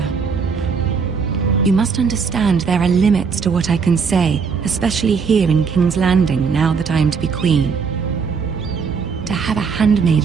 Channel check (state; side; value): quieter; left; 5.7 dB